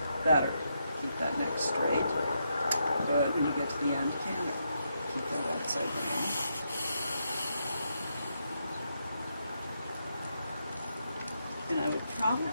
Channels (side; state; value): both; inverted; correlation -0.81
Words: better. Keep that neck straight. Good. When you get to the end, canter. Keep that outside rein. And I would